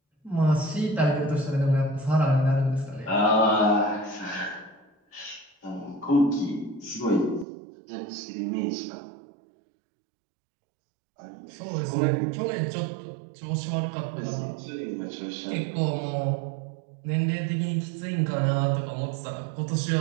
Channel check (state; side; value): drops out; left; at 7.5 s